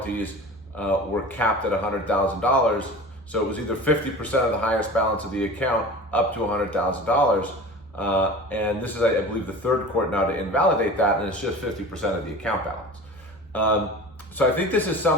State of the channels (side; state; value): left; noise; rumble, 29 dB below the sound